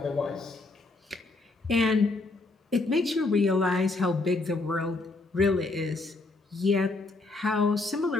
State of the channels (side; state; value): right; quieter; 3.3 dB